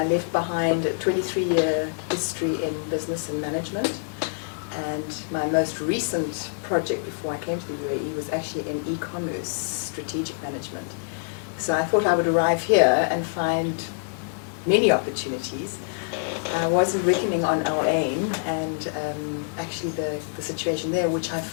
left behind a 23-year history in business and management. And my most recent project before I came to the UAE was actually in e-commerce strategic management. So I thought I would arrive here and find many opportunities. I wasn't reckoning on our aim and actually the situation there, which I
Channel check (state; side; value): silent; right; 55 dB below the other